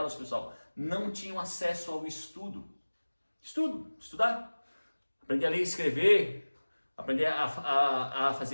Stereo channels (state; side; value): inverted; both; correlation -1.00